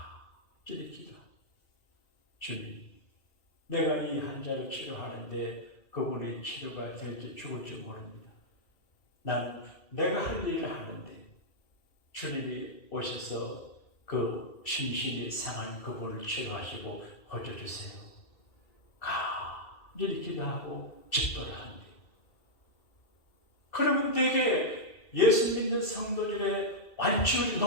기도. 주님, 내가 이 환자를 치료하는데 그분이 치료가 될지 죽을지 모릅니다. 나는 내가 할 일을 하는데 주님이 오셔서 그 심신이 상한 그분을 치료하시고 고쳐주세요. 간절히 기도하고 집도를 하는데, 그러면 되게 예수 믿는 성도들의 완치율이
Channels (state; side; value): late; right; 2.3 ms